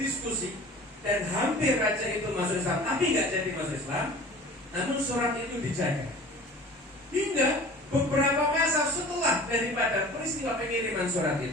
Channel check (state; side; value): normal; both; correlation 0.42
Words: dan hampir raja itu masuk Islam, tapi gak jadi masuk Islam, namun surat itu dijaga. Hingga beberapa masa setelah daripada peristiwa pengiriman surat